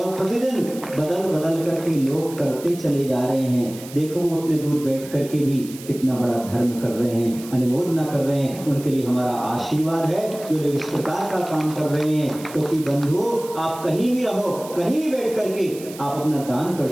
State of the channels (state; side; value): noise; right; hiss, 16 dB below the sound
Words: प्रतिदिन बदल करके लोग करते चले जा रहे हैं। देखो वो उतने दूर बैठ करके भी कितना बड़ा धर्म कर रहे हैं, अनुमोदना कर रहे हैं। उनके लिए हमारा आशीर्वाद है जो लोग इस प्रकार का काम कर रहे हैं। क्योंकि बंधु आप कहीं भी रहो, कहीं भी बैठ करके आप अपना दान कर